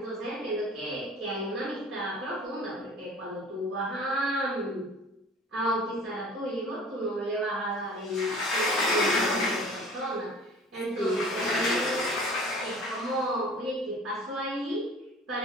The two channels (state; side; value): normal; both; correlation 0.45